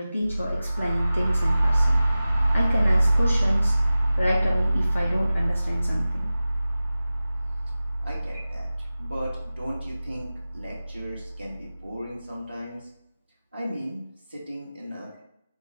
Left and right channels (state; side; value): inverted; both; correlation -0.96